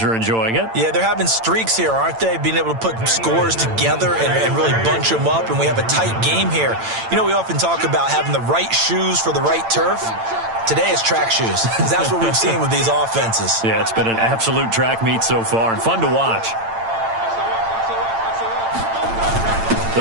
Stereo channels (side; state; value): left; late; 8.9 ms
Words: are enjoying it. Yeah, they're having streaks here, aren't they? Being able to put scores together and really bunch them up, and we have a tight game here. You know, we often talk about having the right shoes for the right turf. Today it's track shoes. That's what we've seen with these offenses. Yeah, it's been an absolute track meet so far and fun to watch.